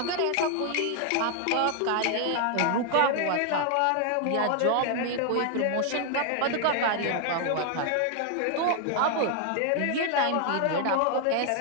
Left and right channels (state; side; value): different; both; correlation 0.00